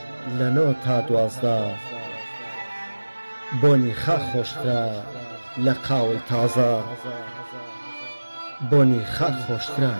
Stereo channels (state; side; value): inverted; both; correlation -1.00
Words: لە 9 تا 12 بۆنی خا خۆشترە لە قاوەی تازە بۆنی خا خۆشترە